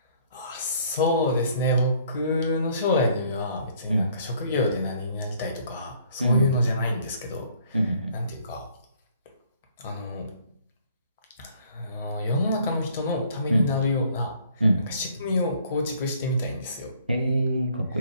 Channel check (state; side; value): inverted; both; correlation -0.60